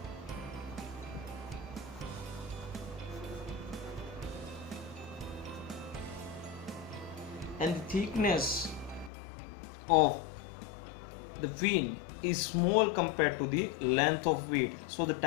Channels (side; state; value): right; drops out; at 9.1 s